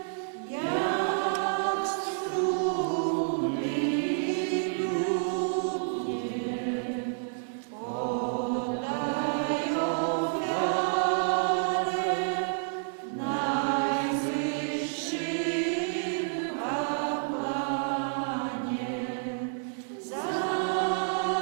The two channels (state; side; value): silent; left; digital silence